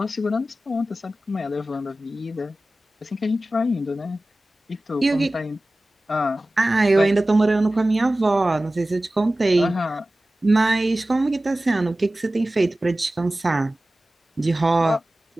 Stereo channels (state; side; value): normal; both; correlation 0.96